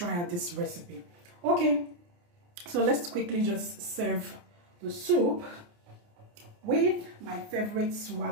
out this recipe. Okay, so let's quickly just serve the soup with my favorite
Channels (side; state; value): left; late; 29 ms